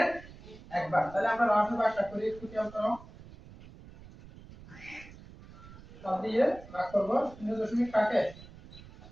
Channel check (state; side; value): noise; right; rumble, 18 dB below the sound